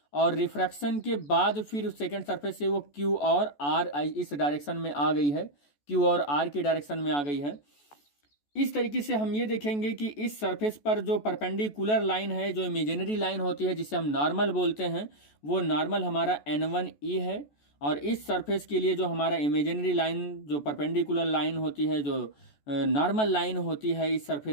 और रिफ्रैक्शन के बाद फिर सेकंड सरफेस से वो क्यू और आर इस डायरेक्शन में आ गई है, क्यू और आर की डायरेक्शन में आ गई है। इस तरीके से हम ये देखेंगे कि इस सरफेस पर जो परपेंडिकुलर लाइन है, जो इमेजिनरी लाइन होती है जिसे हम नॉर्मल बोलते हैं, वो नॉर्मल हमारा N1E है। और इस सरफेस के लिए जो हमारा इमेजिनरी लाइन, जो परपेंडिकुलर लाइन होती है, जो नॉर्मल लाइन होती है इस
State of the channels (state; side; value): late; right; 14 ms